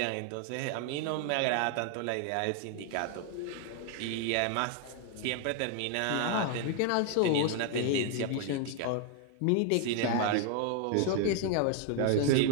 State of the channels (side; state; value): both; different; correlation 0.00